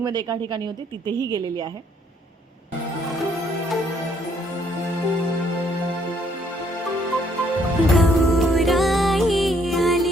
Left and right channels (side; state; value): both; normal; correlation 0.67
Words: एका ठिकाणी होती तिथेही गेलेली आहे.